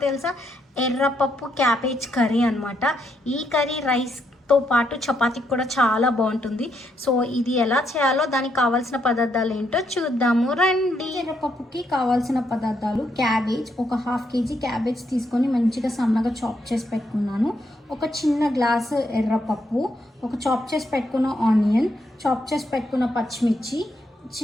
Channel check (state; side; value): normal; both; correlation 0.77